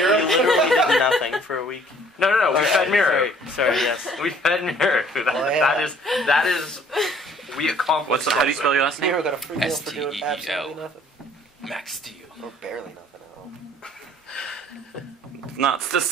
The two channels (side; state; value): both; normal; correlation 0.57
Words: literally did nothing for a week. No, we fed Miro. Sorry, yes. We fed Miro. That is, we accomplished. How do you spell your last name? Miro got a free meal for doing STEEL. absolutely nothing. Max Steel. Or barely nothing at all. Not the.